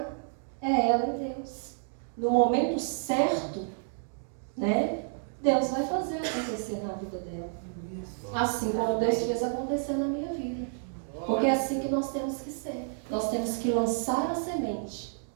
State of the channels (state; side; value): silent; left; digital silence